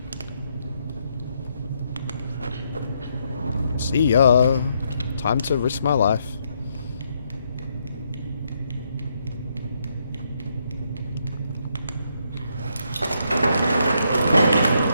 See ya. Time to risk my life.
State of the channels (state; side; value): inverted; both; correlation -0.76